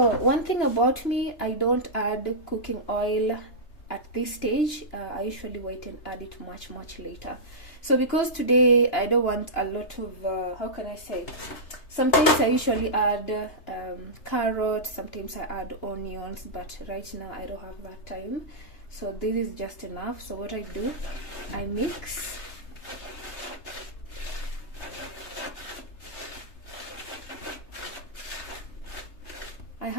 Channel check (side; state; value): right; late; 3.3 ms